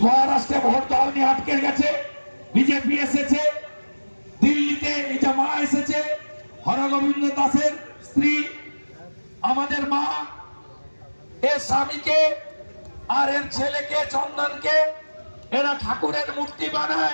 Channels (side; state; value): both; inverted; correlation -1.00